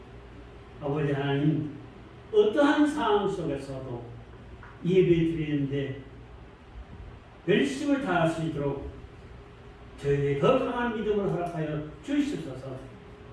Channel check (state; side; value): identical; both; correlation 1.00